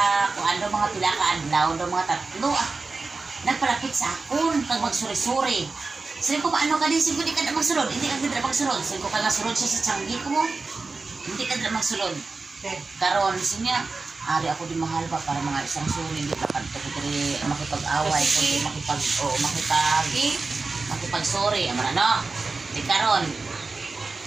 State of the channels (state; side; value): quieter; left; 3.9 dB